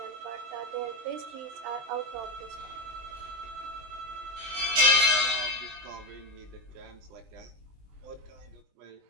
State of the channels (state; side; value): late; left; 20 ms